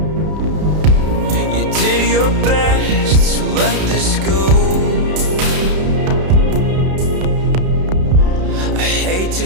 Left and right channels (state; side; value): late; left; 32 ms